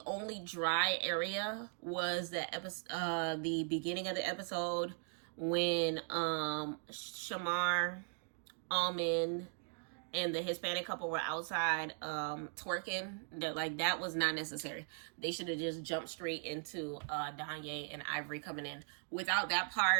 only dry area was the beginning of the episode when Shamar, Almond, and the Hispanic couple were outside twerking. That was not necessary. They should have just jumped straight into Danye and Ivory coming in. Without that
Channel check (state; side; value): silent; left; 52 dB below the other